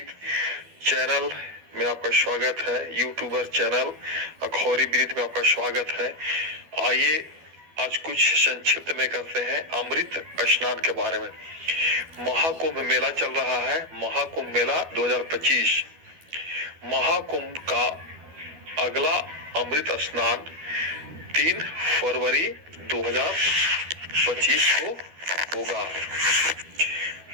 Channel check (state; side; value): late; left; 12 ms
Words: चैनल में आपका स्वागत है। यूट्यूबर चैनल अखौरी विनीत में आपका स्वागत है। आइए आज कुछ संक्षिप्त में करते हैं अमृत स्नान के बारे में। महाकुंभ मेला चल रहा है। महाकुंभ मेला 2025। महाकुंभ का अगला अमृत स्नान 3 फरवरी 2025 को होगा।